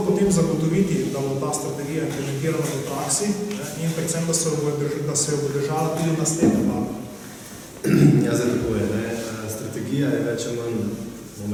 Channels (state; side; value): identical; both; correlation 1.00